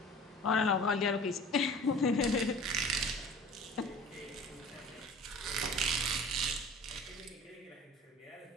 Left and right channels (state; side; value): normal; both; correlation 0.42